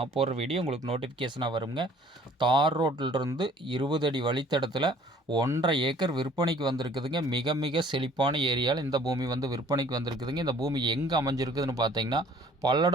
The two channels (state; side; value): normal; both; correlation 0.55